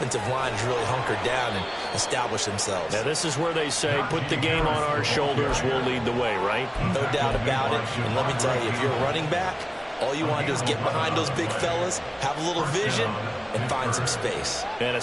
line has really hunkered down and established themselves. Now, this is where they say, put the game on our shoulders, we'll lead the way, right? No doubt about it. And let me tell you, if you're a running back, all you want to do is get behind those big fellas, have a little vision, and find some space. And a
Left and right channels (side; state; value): both; identical; correlation 1.00